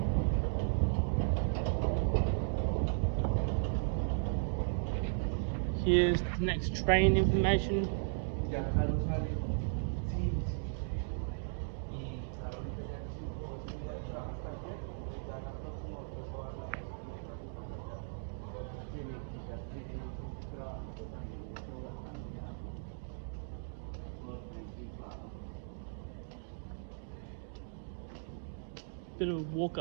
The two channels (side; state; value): left; silent; digital silence